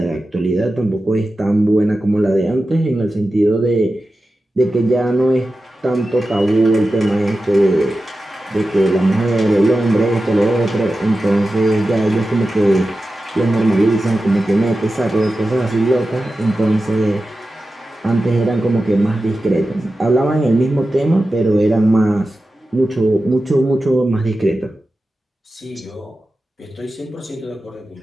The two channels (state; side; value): normal; both; correlation 0.93